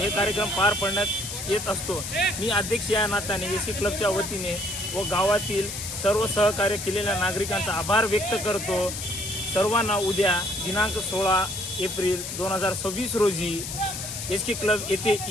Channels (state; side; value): noise; left; hiss, 6 dB below the sound